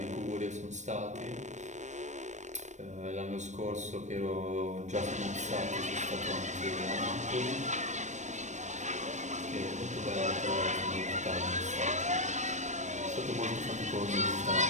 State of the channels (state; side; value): late; left; 0.34 ms